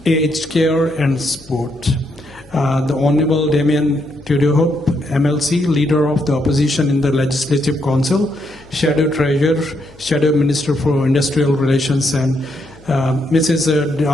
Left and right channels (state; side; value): noise; left; hum, 26 dB below the sound